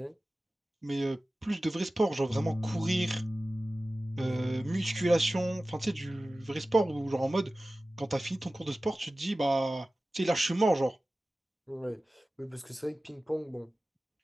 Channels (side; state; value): both; normal; correlation 0.96